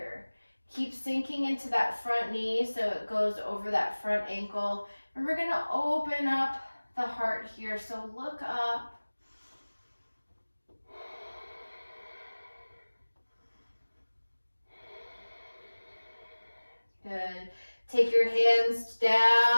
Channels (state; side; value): inverted; both; correlation -1.00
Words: Keep sinking into that front knee so it goes over that front ankle. And we're gonna open up the heart here. So look up. Good. Take your hands